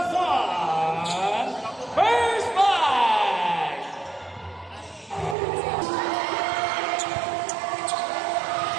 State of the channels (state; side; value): drops out; left; at 5.4 s